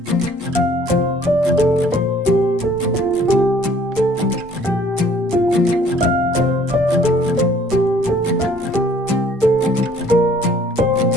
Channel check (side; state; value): both; normal; correlation 0.57